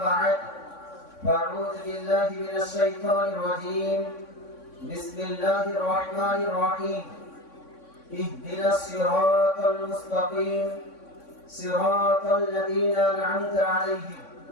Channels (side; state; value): right; late; 3.6 ms